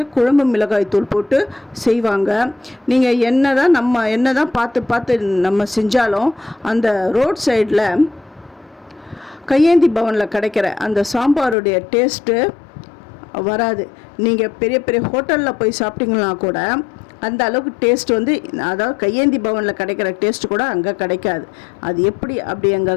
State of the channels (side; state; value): right; drops out; at 11.6 s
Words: குழம்பு மிளகாய்த்தூள் போட்டு செய்வாங்க. நீங்கள் என்ன தான் பார்த்து நம்ம செஞ்சாலும் அந்த ரோட் சைடில் கையேந்தி பவனில் கிடைக்கிற அந்த சாம்பாருடைய டேஸ்ட்டு வராது. நீங்கள் பெரிய பெரிய ஹோட்டலில் போய் சாப்பிட்டீங்கன்னா கூட அந்த அளவுக்கு டேஸ்ட் அதாவது கையேந்தி பவனில் கிடைக்கிற டேஸ்ட்டு கூட அங்கே கிடைக்காது. அது எப்படி